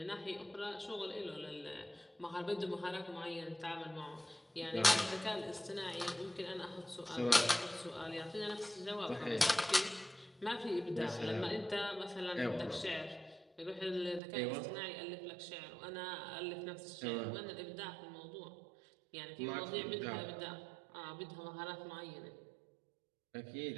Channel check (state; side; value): drops out; left; at 14.2 s